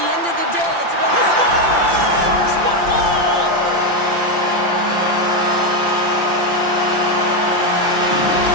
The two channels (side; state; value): left; late; 5.8 ms